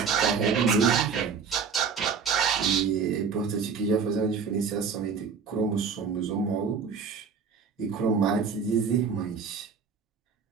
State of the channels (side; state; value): left; quieter; 5.9 dB